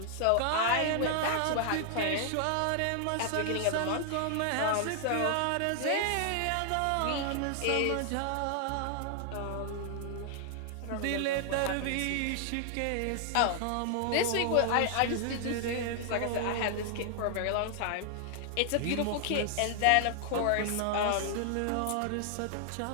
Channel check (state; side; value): different; both; correlation 0.00